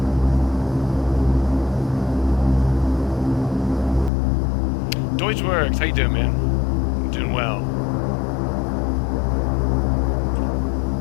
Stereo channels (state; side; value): drops out; right; at 4.1 s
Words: Works. How you doing, man? I'm doing well.